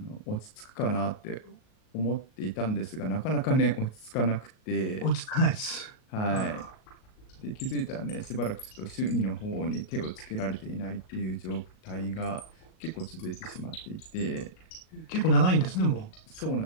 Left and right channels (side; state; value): right; late; 38 ms